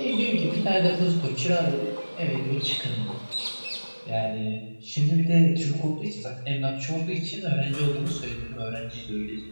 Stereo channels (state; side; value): inverted; both; correlation -1.00